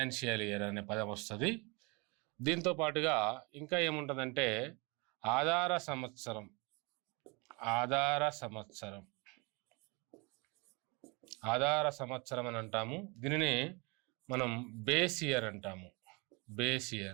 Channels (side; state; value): left; quieter; 28.5 dB